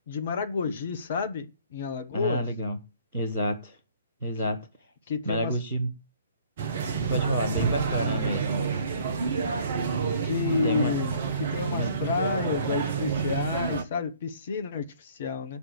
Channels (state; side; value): inverted; both; correlation -0.56